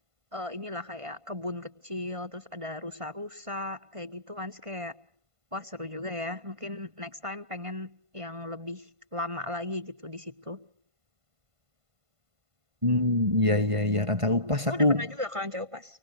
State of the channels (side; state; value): left; late; 1.5 ms